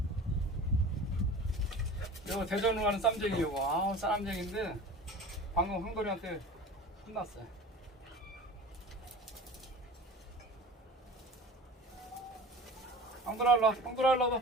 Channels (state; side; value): normal; both; correlation 0.37